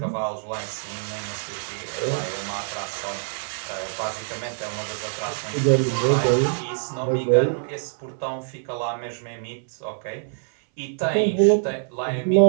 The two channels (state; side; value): silent; left; 62 dB below the other